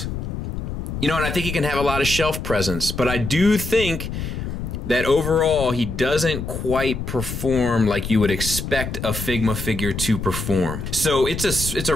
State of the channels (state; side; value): noise; left; rumble, 5 dB below the sound